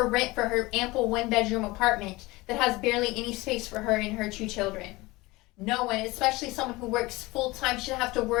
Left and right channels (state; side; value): quieter; right; 21.4 dB